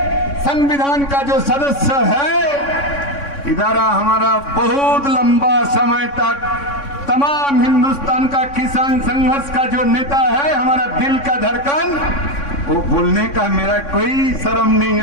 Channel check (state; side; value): late; right; 3.6 ms